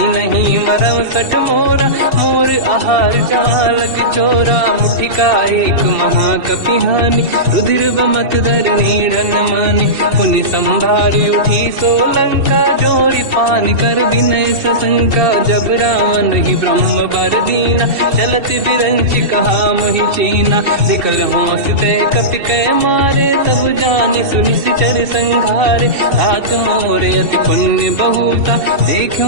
नहीं मरम सट मोरा मोर आहार जालक चोरा मुठिका एक महाकपिहानि रुधिर बमत धर नीड़न मानि पुनि संभारी उठी सोलंका जोड़ी पान कर विनय सशंका जब रावण ही ब्रह्म बर दीना चलत बिरंच कहा मोहि चीना विकल होश तय कपि कै मारे तब जाने सुनि सिचर संघारे तात मोरे अति पुण्य बहुता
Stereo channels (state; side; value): late; left; 2.7 ms